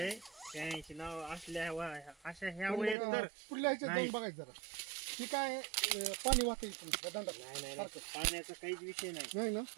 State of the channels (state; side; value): drops out; left; at 3.0 s